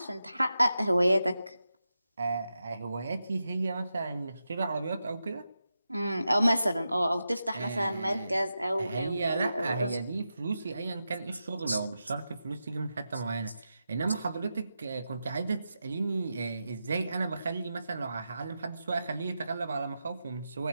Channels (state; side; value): inverted; both; correlation -0.89